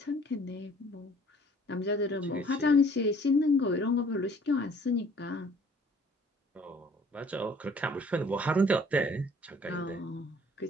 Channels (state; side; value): normal; both; correlation 0.55